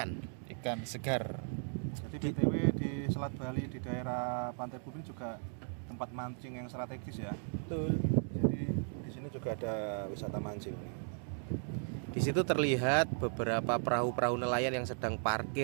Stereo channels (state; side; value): silent; left; 54 dB below the other